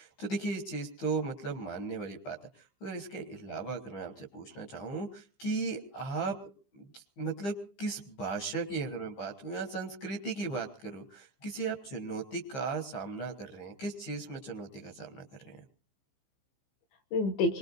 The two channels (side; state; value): right; late; 15 ms